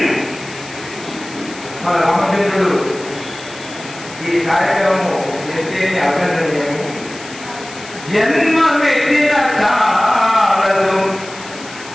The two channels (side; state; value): left; noise; hiss, 16 dB below the sound